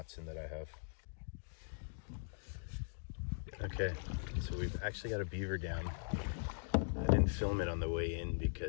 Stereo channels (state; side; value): silent; right; digital silence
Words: that I have. Okay, so we've actually got a beaver dam. I didn't film it on the way in